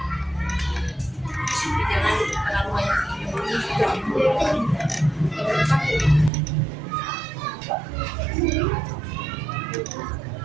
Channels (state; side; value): drops out; left; at 6.3 s